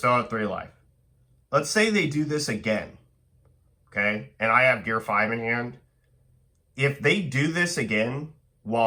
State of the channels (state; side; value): identical; both; correlation 1.00